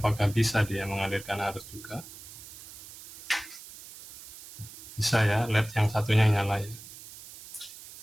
bisa dia mengalirkan arus juga? Bisa ya, LED yang satunya nyala ya.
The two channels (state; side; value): noise; right; hiss, 16 dB below the sound